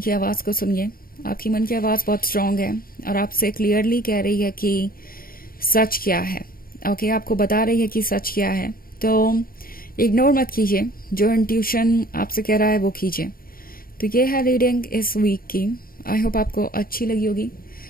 आवाज को सुनिए। आपकी मन की आवाज बहुत स्ट्रांग है और आपसे क्लियरली कह रही है कि सच क्या है। ओके, आपको बता रही है कि सच क्या है। तो इग्नोर मत कीजिए, जो इंट्यूशन आपसे कह रहा है वो कीजिए। तो ये है रीडिंग इस वीक की। आई होप आपको अच्छी लगी होगी।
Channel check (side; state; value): right; late; 0.42 ms